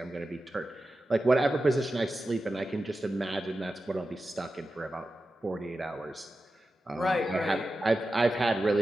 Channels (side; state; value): both; normal; correlation 0.92